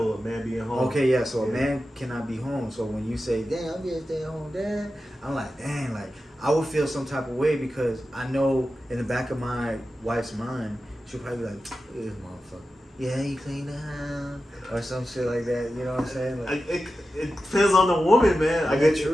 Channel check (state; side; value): normal; both; correlation 0.92